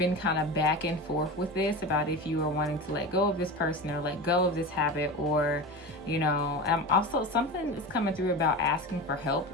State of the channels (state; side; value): normal; both; correlation 0.26